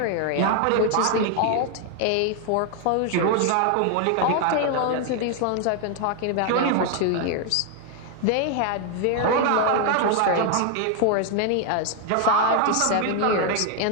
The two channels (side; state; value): both; different; correlation 0.00